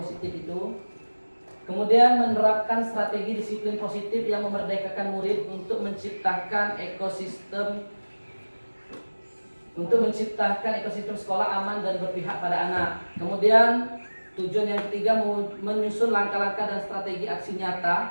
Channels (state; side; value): inverted; both; correlation -1.00